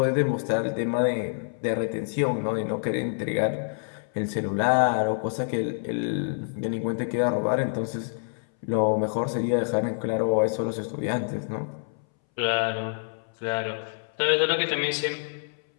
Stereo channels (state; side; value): silent; right; 60 dB below the other